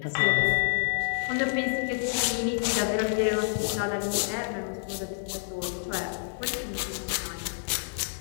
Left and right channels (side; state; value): right; silent; digital silence